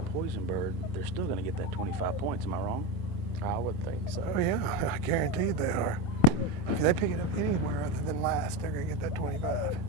poison bird, they're still going to get that 25 points. Am I wrong? I would think so. Oh yeah, I guarantee they are. If they pick it up anywhere other than last, they're going to get that 25.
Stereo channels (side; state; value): both; normal; correlation 0.16